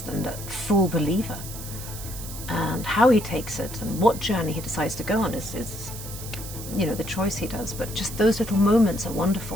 and a full believer, and how he takes it and what journey he decides to go on is the choice he does. But just those little moments are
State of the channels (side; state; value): right; noise; hiss, 11 dB below the sound